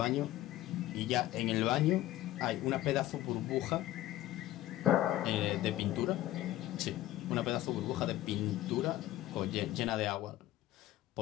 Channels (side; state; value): right; quieter; 15.0 dB